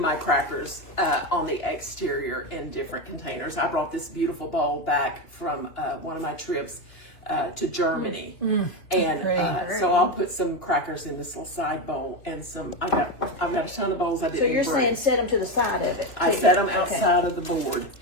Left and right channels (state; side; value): late; right; 2.9 ms